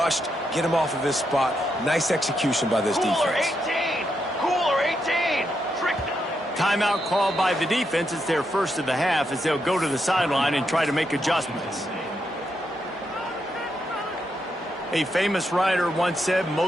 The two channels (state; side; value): normal; both; correlation 0.82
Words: get him off of his spot. Nice execution by this Cooler defense. 18. Cooler 18. Trick. Timeout called by the defense. It's their first of the half as they'll go to the sideline and try to make adjustments. A famous writer once said,